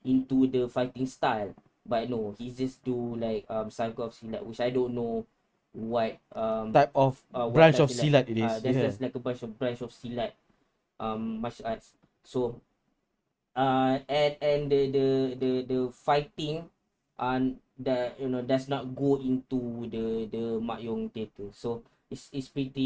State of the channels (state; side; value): identical; both; correlation 1.00